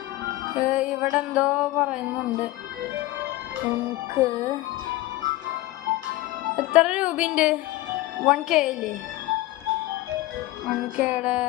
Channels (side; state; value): right; quieter; 17.4 dB